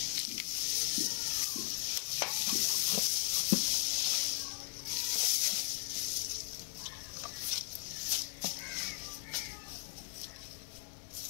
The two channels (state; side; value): silent; right; 53 dB below the other